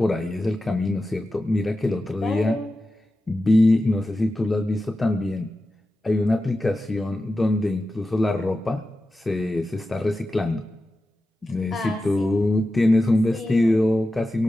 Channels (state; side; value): normal; both; correlation 0.93